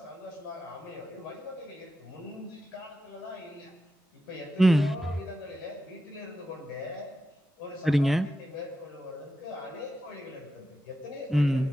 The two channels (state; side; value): normal; both; correlation 0.89